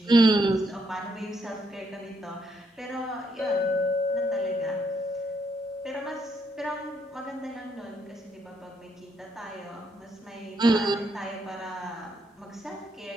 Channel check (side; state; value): both; normal; correlation 0.75